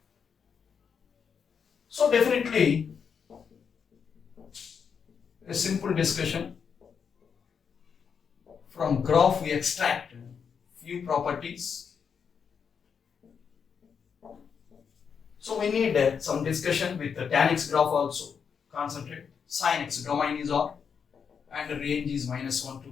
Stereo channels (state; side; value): quieter; right; 6.7 dB